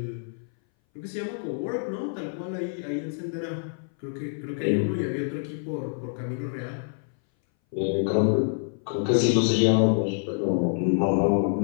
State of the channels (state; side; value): silent; right; 59 dB below the other